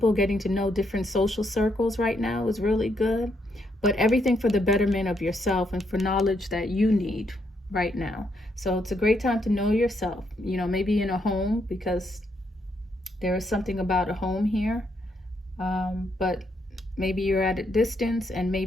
getting to know different social circles right now is really good. But everything for the betterment of yourself and for knowledge that you need right now. So it's a great time to know yourself, you know, maybe in a home, because there is something about a home here. But maybe you're at a distance, and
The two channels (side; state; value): both; normal; correlation 0.76